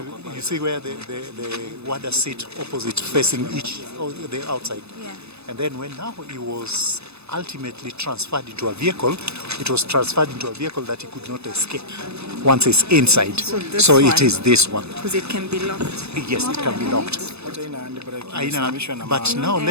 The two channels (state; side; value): late; left; 0.79 ms